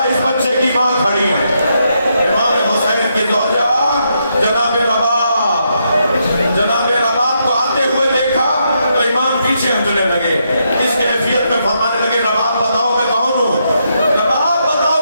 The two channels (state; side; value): inverted; both; correlation -0.79